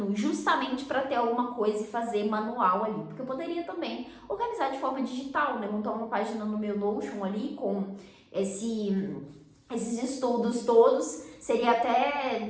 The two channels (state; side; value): identical; both; correlation 1.00